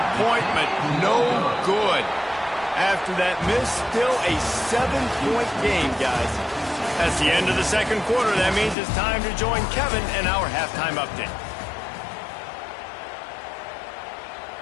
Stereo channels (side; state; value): right; drops out; at 8.8 s